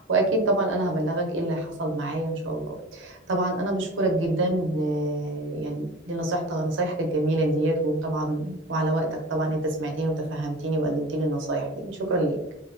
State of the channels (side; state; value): both; normal; correlation 0.36